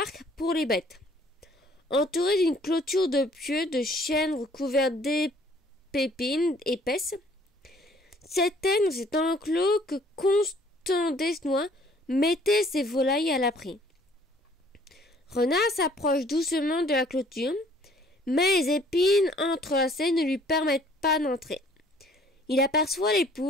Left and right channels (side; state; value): both; normal; correlation 0.58